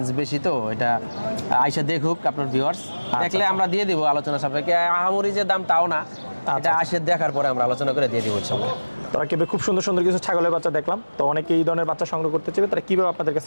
বেশি, তো এটা আইসা দেখুক আপনার ভিউয়ার্স, দেখলে আমরা দিয়ে দিব আলোচনা সাপেক্ষে। আহামরি যে দাম তাও না, এটা আসে দেখার পরে আমরা আলোচনা করে দিয়ে দিব ইনশাআল্লাহ। তারা কিভাবে খুব সুন্দর সুন্দর কিছু ছাগলের বাচ্চা দেখলাম, তো অনেকে এই ধরনের বাচ্চা সংগ্রহ করতে চাইবে, তারা কিভাবে আপনাদের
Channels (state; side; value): inverted; both; correlation -1.00